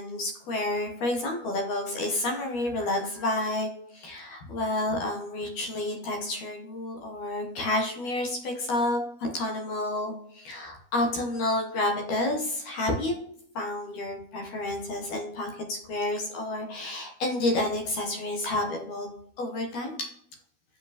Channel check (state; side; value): late; right; 12 ms